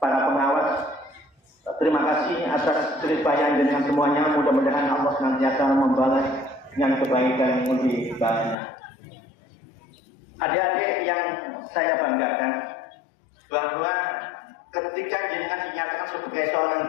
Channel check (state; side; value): drops out; right; at 8.6 s